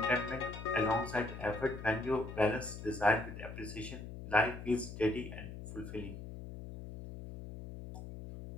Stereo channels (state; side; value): noise; left; hum, 10 dB below the sound